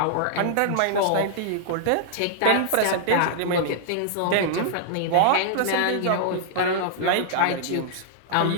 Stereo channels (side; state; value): both; different; correlation -0.01